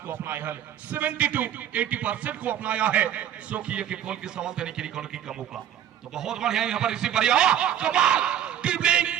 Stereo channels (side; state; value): left; quieter; 10.4 dB